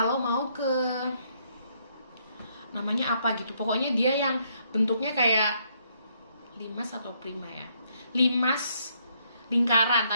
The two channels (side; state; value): both; inverted; correlation -0.71